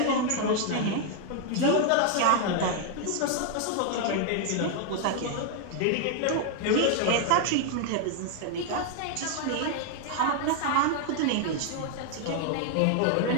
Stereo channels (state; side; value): different; both; correlation 0.00